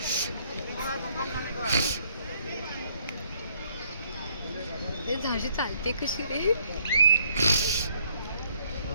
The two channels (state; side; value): inverted; both; correlation -0.67